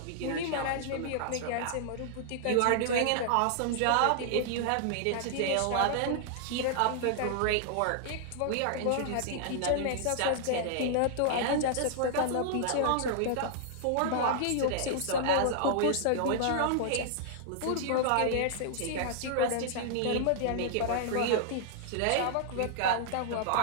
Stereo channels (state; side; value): different; both; correlation -0.01